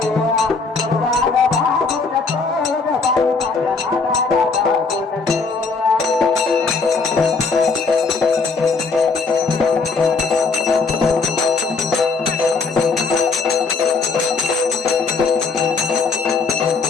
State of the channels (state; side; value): quieter; right; 4.4 dB